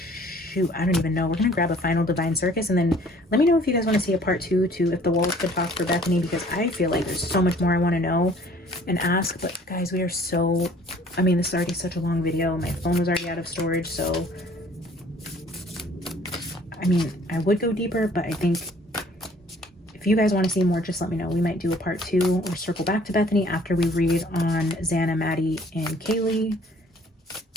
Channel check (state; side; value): normal; both; correlation 0.55